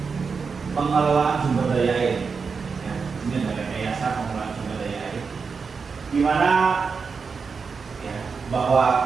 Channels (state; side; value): quieter; left; 5.3 dB